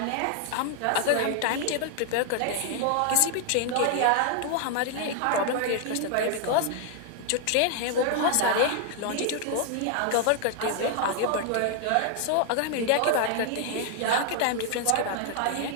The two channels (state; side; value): different; both; correlation 0.00